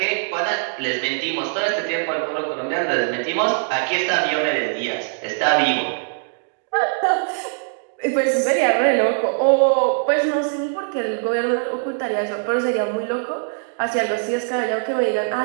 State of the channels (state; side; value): silent; left; digital silence